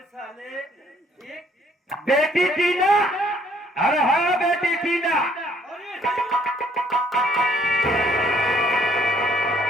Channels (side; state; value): both; normal; correlation 0.64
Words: बेटी टीना, अरे हाँ बेटी टीना,